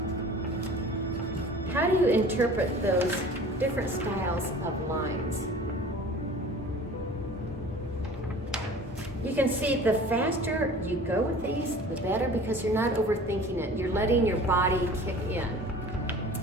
How do you interpret those different styles of lines? You can see the faster you go with these, the better, because you're not overthinking it. You're letting your body kick in.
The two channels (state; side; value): normal; both; correlation 0.43